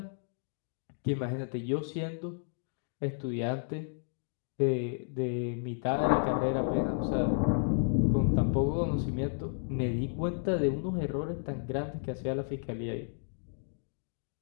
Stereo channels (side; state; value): right; silent; digital silence